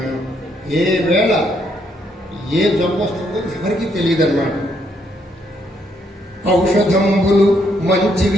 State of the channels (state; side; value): normal; both; correlation 0.73